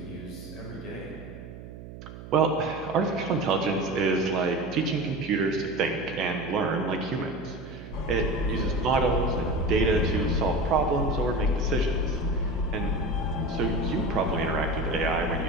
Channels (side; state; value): right; noise; hum, 14 dB below the sound